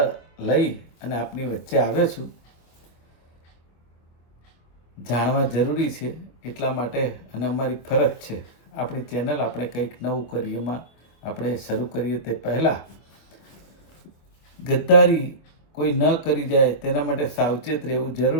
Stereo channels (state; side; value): late; right; 25 ms